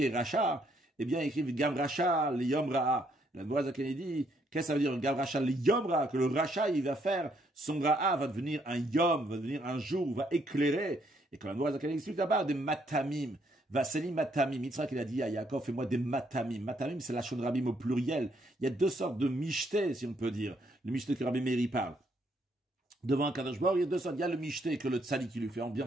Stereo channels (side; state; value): both; normal; correlation 0.71